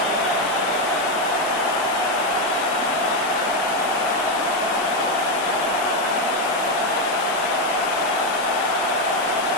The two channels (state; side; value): noise; left; hiss, 13 dB below the sound